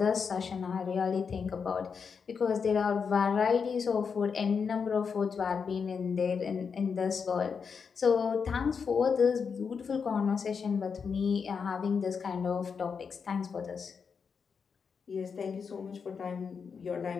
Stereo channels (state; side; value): quieter; right; 6.0 dB